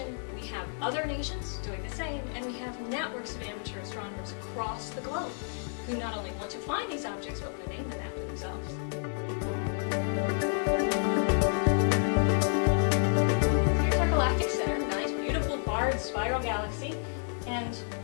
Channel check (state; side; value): silent; right; 58 dB below the other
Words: we have other nations doing the same, and we have networks of amateur astronomers across the globe who not only want to find these objects, but want to name them after themselves. Here's our galactic center, nice, beautiful, barred spiral galaxy, and